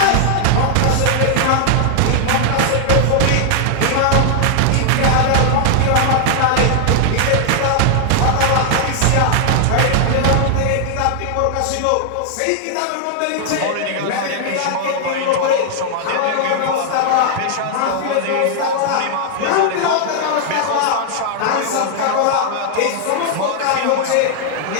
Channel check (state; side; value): different; both; correlation 0.00